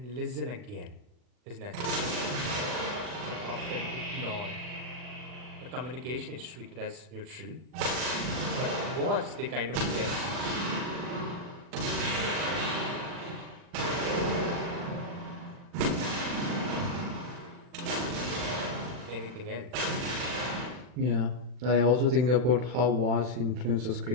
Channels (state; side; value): late; left; 40 ms